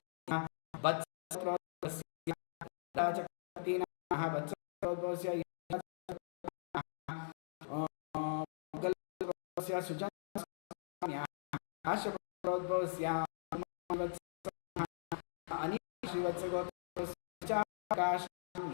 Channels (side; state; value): right; silent; digital silence